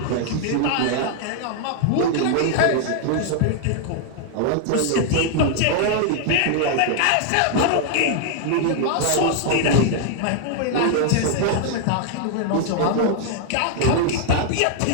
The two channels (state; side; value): different; both; correlation 0.00